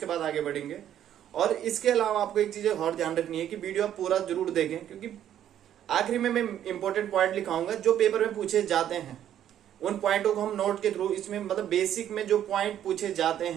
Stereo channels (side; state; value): left; quieter; 10.7 dB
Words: बाद आगे बढ़ेंगे। और इसके अलावा आपको एक चीज और ध्यान रखनी है कि वीडियो आप पूरा जरूर देखें, क्योंकि आखिरी में मैं इंपॉर्टेंट पॉइंट लिखाऊंगा जो पेपर में पूछे जाते हैं। उन पॉइंटों को हम नोट के थ्रू इसमें मतलब बेसिक में जो पॉइंट पूछे जाते